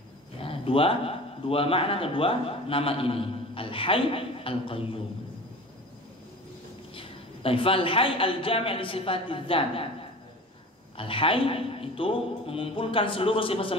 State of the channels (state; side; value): normal; both; correlation 0.38